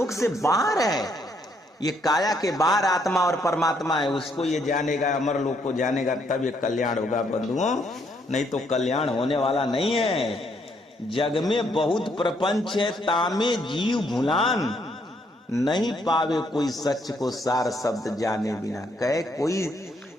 से बाहर है। ये काया के बाहर आत्मा और परमात्मा है, उसको ये जानेगा, अमर लोक को जानेगा, तब ये कल्याण होगा बंधुओं, नहीं तो कल्याण होने वाला नहीं है। जग में बहुत प्रपंच है, तामे जीव भुलान, नहीं पावे कोई सच को सार शब्द जाने बिना। कहे कोई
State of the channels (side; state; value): both; normal; correlation 0.71